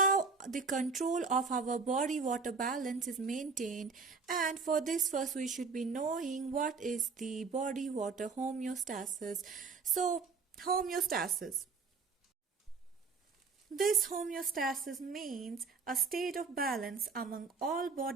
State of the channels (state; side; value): quieter; left; 4.7 dB